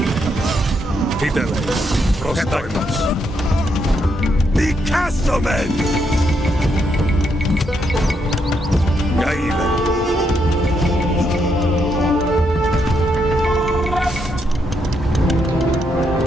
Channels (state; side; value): normal; both; correlation 0.78